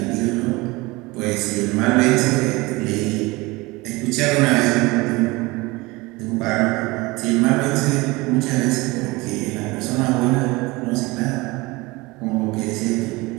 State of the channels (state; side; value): quieter; left; 22.8 dB